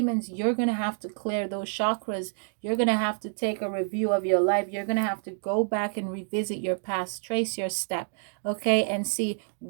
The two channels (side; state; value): left; silent; digital silence